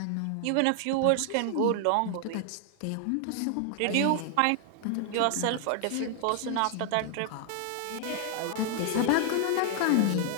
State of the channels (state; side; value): different; both; correlation 0.00